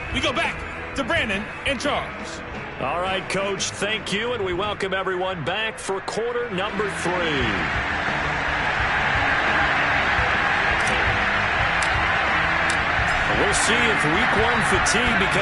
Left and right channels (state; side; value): identical; both; correlation 1.00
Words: we go back to Brandon and Charles. All right, Coach, thank you, and we welcome everyone back for quarter number 3. We'll see if week 1 fatigue